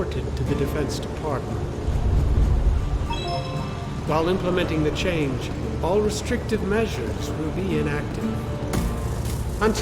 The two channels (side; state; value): both; identical; correlation 1.00